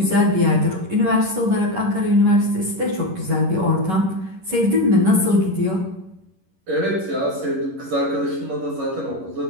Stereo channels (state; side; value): late; left; 11 ms